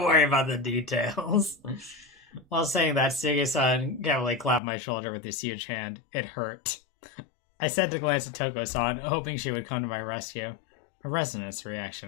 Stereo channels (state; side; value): drops out; right; at 4.6 s